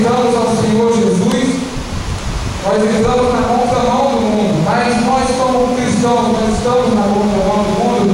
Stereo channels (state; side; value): identical; both; correlation 1.00